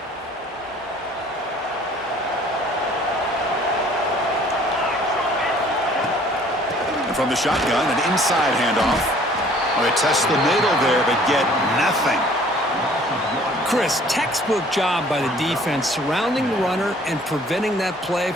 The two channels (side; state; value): both; normal; correlation 0.55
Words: And from the shotgun, an inside handoff. Well, they test the middle there, but get nothing. Chris, textbook job by the defense surrounding the runner and preventing that play